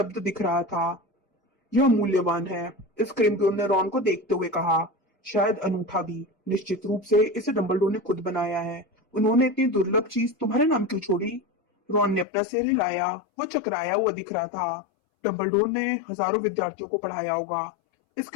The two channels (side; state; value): right; drops out; at 12.2 s